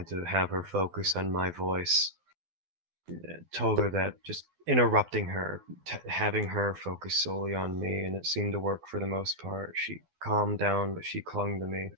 to have her focus on my voice. Told her that just interrupting her, having her focus solely on me, and it seemed to work for the most part. She calmed down, but she clung to me.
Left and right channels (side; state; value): left; late; 12 ms